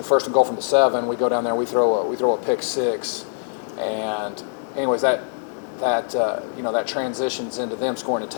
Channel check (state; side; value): silent; right; 64 dB below the other